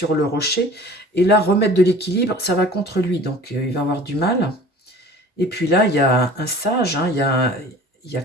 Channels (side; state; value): both; normal; correlation 0.45